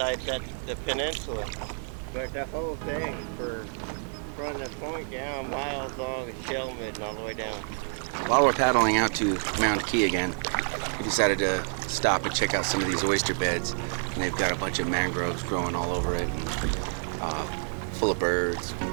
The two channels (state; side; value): silent; left; 59 dB below the other